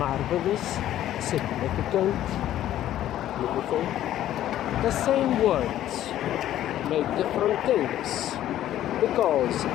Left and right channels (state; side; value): quieter; right; 12.6 dB